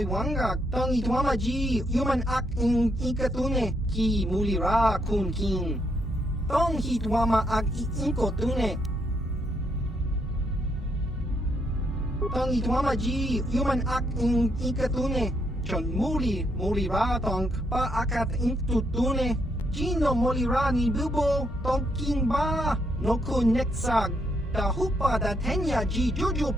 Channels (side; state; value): both; normal; correlation 0.76